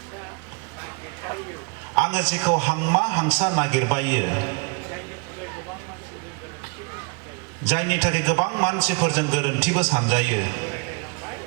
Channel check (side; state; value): left; quieter; 33.2 dB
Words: आङो जेखौ हांमा हांसा नागिरबायो जायनि थाखाय गोबां मानसिफोरजों गोरोन्थिबो सानजायो